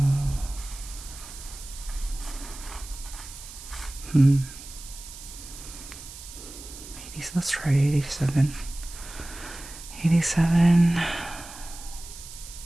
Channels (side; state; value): right; noise; hiss, 14 dB below the sound